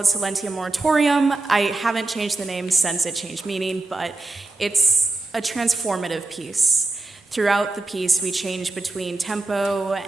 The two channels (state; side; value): quieter; left; 3.2 dB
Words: Silentium Moratorium. I haven't changed the name since it changed meaning, but it's a transformative piece. Throughout the piece, we change between tempo